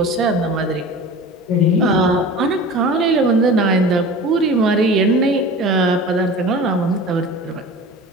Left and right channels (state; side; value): normal; both; correlation 0.37